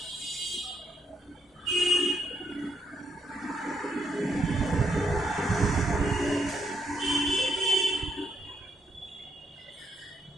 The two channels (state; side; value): normal; both; correlation 0.76